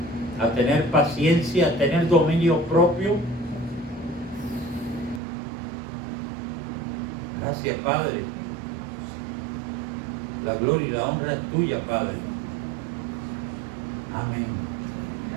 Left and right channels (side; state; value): left; drops out; at 5.2 s